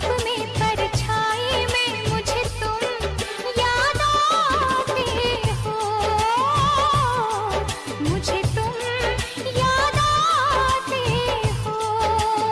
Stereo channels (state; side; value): identical; both; correlation 1.00